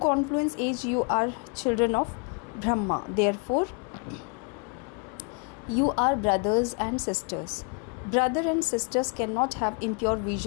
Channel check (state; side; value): quieter; right; 36.6 dB